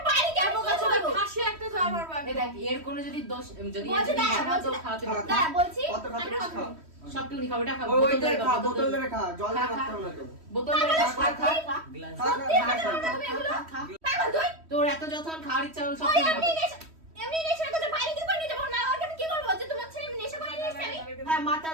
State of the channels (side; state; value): left; late; 3.1 ms